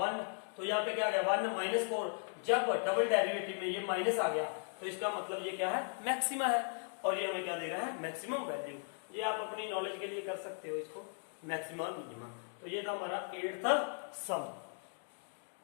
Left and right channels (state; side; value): silent; right; 53 dB below the other